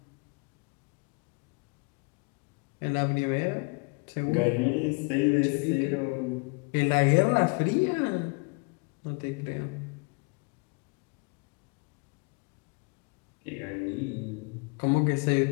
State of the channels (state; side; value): quieter; right; 32.6 dB